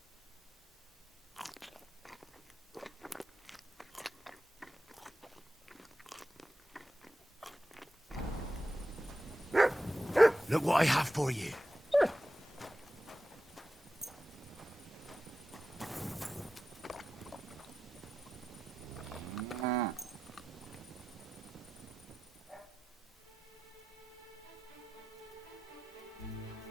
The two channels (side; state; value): both; normal; correlation 0.92